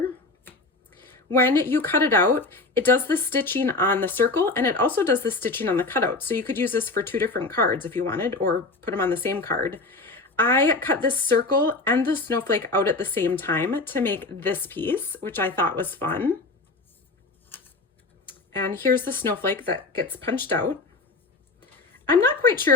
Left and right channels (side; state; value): right; quieter; 3.4 dB